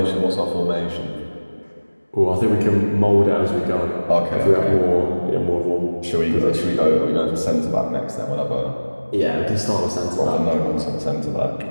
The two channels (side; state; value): both; inverted; correlation -1.00